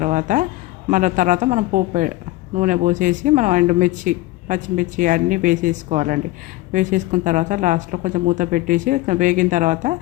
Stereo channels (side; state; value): right; quieter; 17.9 dB